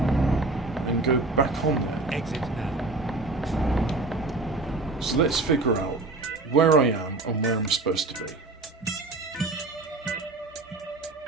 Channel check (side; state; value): left; quieter; 3.2 dB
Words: and go back on there? Exit now. So let's figure out where I am and where I'm supposed to be.